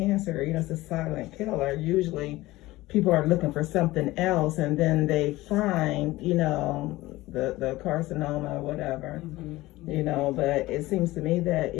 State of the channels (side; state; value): right; quieter; 18.4 dB